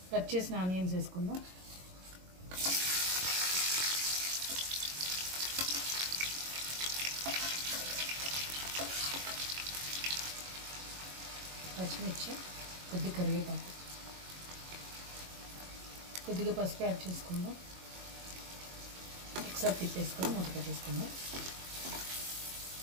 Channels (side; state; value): left; late; 22 ms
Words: కట్ చేసిన ఆనియన్స్ వేసుకుందాం. పచ్చిమిర్చి, కొద్దిగా కరివేపాకు, కొద్దిగా పసుపు యాడ్ చేసుకుందాం. ఒకసారి తిప్పేసుకొని మూత పెట్టేసుకుందాం.